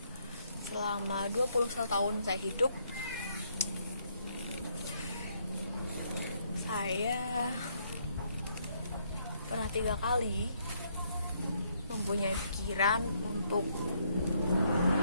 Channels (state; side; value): inverted; both; correlation -0.71